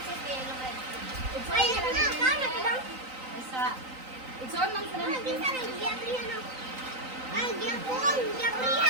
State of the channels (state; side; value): late; left; 3.9 ms